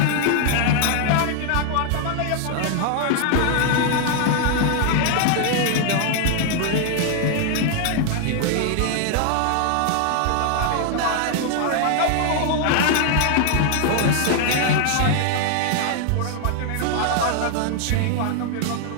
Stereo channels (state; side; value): different; both; correlation 0.00